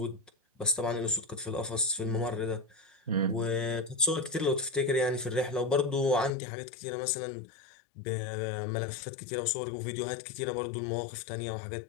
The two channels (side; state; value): right; drops out; at 6.4 s